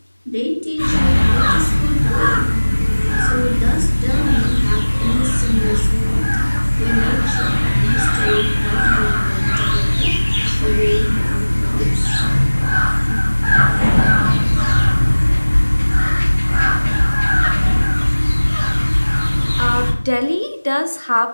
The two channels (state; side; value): inverted; both; correlation -1.00